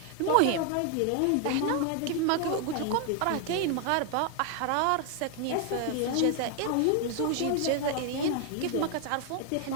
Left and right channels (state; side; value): different; both; correlation 0.00